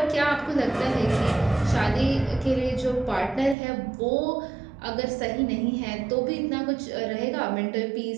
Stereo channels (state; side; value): drops out; left; at 3.6 s